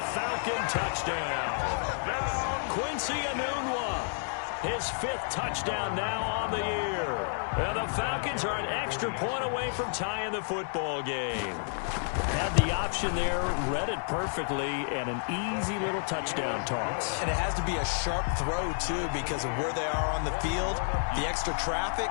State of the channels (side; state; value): right; silent; digital silence